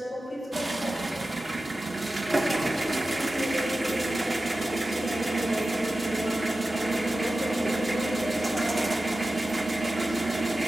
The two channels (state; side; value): normal; both; correlation 0.94